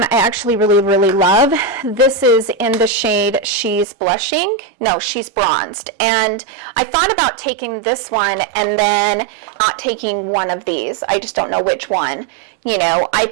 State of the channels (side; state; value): left; drops out; at 3.9 s